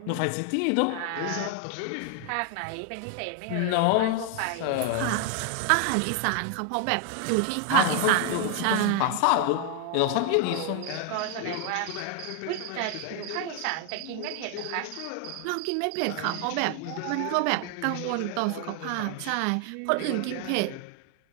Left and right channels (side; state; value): both; different; correlation 0.01